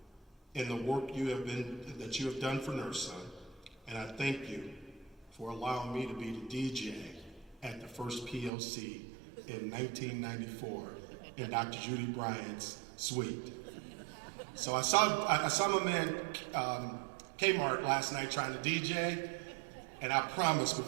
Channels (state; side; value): drops out; left; at 8.5 s